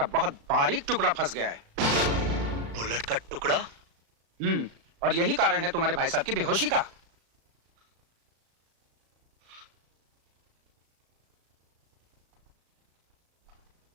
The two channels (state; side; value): late; left; 36 ms